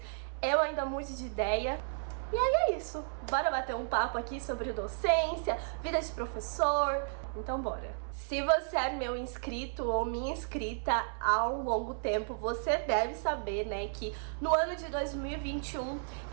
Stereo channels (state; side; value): silent; left; 56 dB below the other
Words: eu ainda mude de ideia. E aí é isso, bora bater um papo aqui sobre docência, vida de professor, então bora. Se você é meu inscrito ou minha inscrita há um longo tempo, você deve saber, né, que no ano de 2021